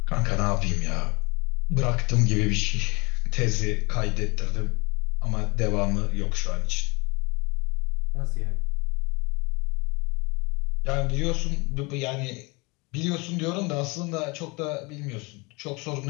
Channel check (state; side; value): quieter; right; 26.9 dB